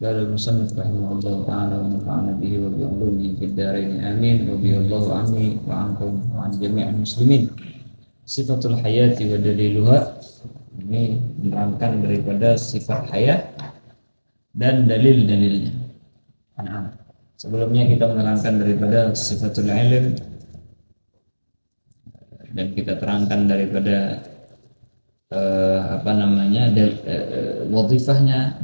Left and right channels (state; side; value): inverted; both; correlation -1.00